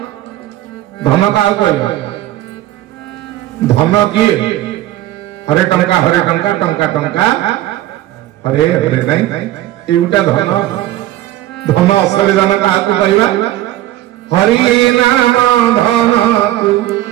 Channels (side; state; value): left; quieter; 14.4 dB